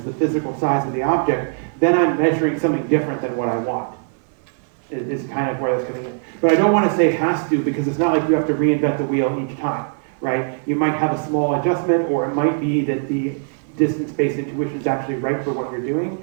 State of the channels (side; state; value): left; silent; 62 dB below the other